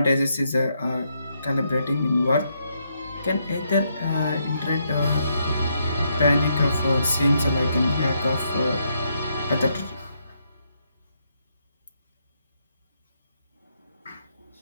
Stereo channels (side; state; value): both; inverted; correlation -0.77